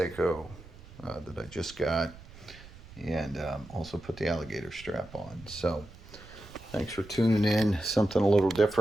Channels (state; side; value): noise; right; rumble, 19 dB below the sound